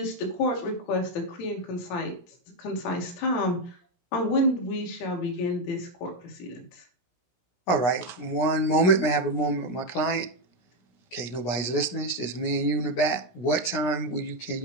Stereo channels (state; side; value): late; right; 17 ms